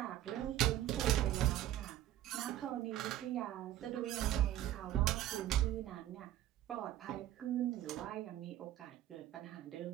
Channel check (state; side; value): quieter; left; 13.0 dB